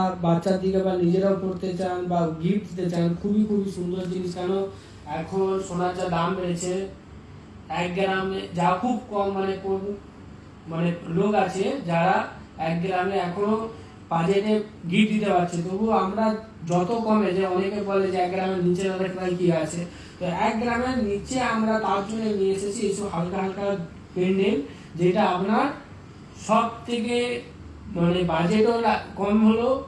বাচ্চার দিকে বা নিজেরাও পড়তে চান বা গিফট দিতে চান, খুবই খুবই সুন্দর জিনিস। কেন এখন সোনার যা দাম বেড়েছে, 1 গ্রামে যা খুব কম মানে লোক আছে যারা 1 গ্রামে এখনো বাজেটে গিফট দিতে পারছে। তবুও আমরা যত কমে, যে অনেকে বলে যে 1 গ্রামের নিচে কি আছে, তো 1 গ্রামের নিচে আমরা তার জন্য নিয়ে এসেছি এইসব হালকা হালকা পেন্ডেন্ট, যেটা আপনার সব থেকে মানে বাজেটও কম হলো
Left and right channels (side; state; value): both; identical; correlation 1.00